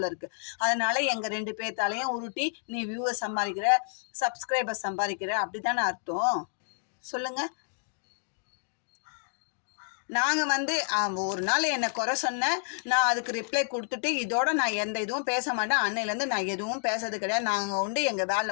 இருக்குது. அதனால் எங்கள் 2 பேர்த்தாலையும் உருட்டி நீ வியூவர் சம்பாதிக்கிற, சப்ஸ்கிரைபர் சம்பாதிக்கிற அப்படி தானே அர்த்தம்? சொல்லுங்கள். நாங்கள் வந்து ஒரு நாள் என்னை குறை சொன்னேன், நான் அதுக்கு ரிப்ளை கொடுத்துட்டு இதோட நான் எந்த இதுவும் பேச மாட்டேன். அன்னையிலேருந்து நான் எதுவும் பேசுறது கிடையாது. நாங்கள் உண்டு எங்கள்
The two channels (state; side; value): silent; right; digital silence